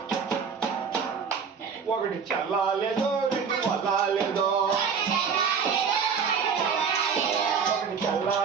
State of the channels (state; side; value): quieter; left; 6.2 dB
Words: ఒకటి చల్లాలేదో రెండు వల్లాలేదో ఒకటి